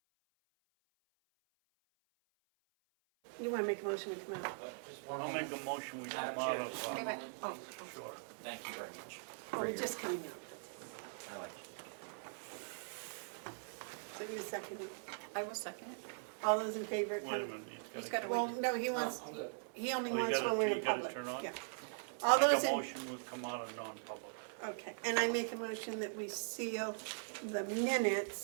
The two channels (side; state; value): left; silent; 50 dB below the other